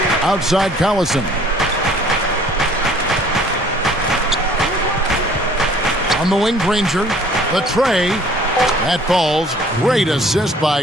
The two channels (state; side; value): normal; both; correlation 0.54